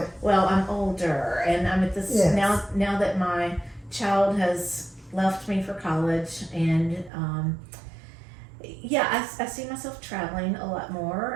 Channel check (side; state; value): left; drops out; at 7.1 s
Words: Well, I'm older, and I'm at this now that my child has left me for college, and I see myself traveling a lot